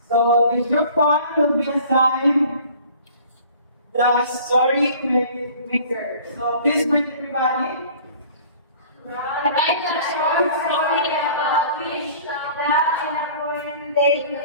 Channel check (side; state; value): both; inverted; correlation -0.48